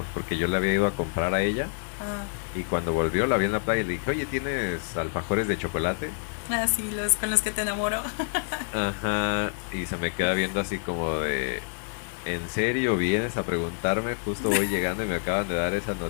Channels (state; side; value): silent; right; 60 dB below the other